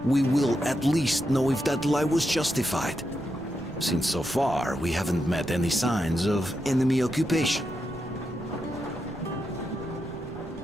we will at least know if that lie was justified. Since so far, we haven't met any signs of enemy occupation.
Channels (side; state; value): right; noise; rumble, 19 dB below the sound